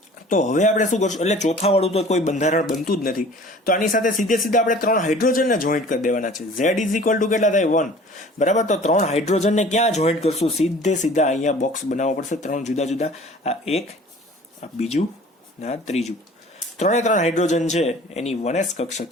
તો હવે આપણે શું કરશું? એટલે ચોથા વાળું તો કોઈ બંધારણ બનતું જ નથી. તો આની સાથે સીધે આપણે 3 હાઇડ્રોજનને જોઈન્ટ કરી દેવાના છે. Z ઇઝ ઇક્વલ ટુ કેટલા થાય? 1, બરાબર. તો 3 હાઇડ્રોજનને ક્યાં જોઈન્ટ કરશું? સીધા અહીંયા બોક્સ બનાવવો પડશે. 3 જુદા જુદા, આ એક, આ બીજું, ના ત્રીજું. 3 હાઇડ્રોજન છે એની 1s કક્ષક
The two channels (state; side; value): normal; both; correlation 0.47